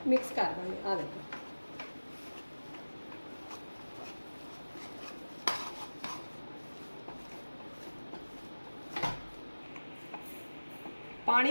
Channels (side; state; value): both; inverted; correlation -1.00